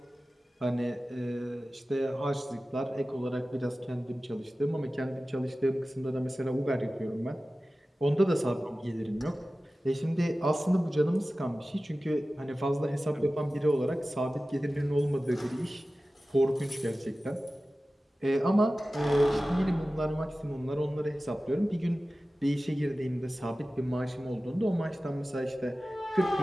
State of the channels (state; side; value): normal; both; correlation 0.96